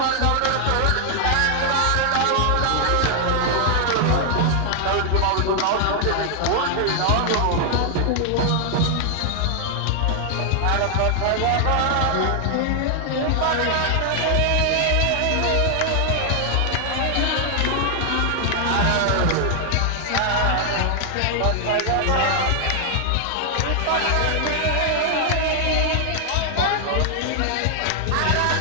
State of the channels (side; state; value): both; different; correlation 0.00